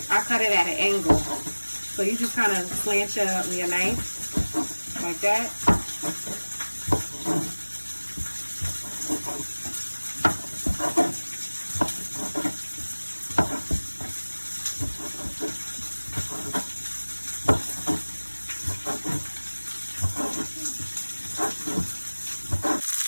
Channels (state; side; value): inverted; both; correlation -1.00